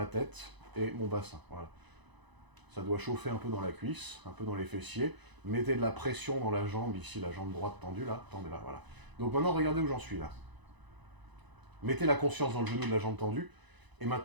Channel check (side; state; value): left; late; 1.0 ms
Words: tête et mon bassin. Voilà. Ça doit chauffer un peu dans la cuisse, un peu dans les fessiers. Mettez de la pression dans la jambe, ici, la jambe droite tendue, là. Tendez là, voilà. Donc maintenant, regardez où j'en suis, là. Mettez la conscience dans le genou de la jambe tendue. Et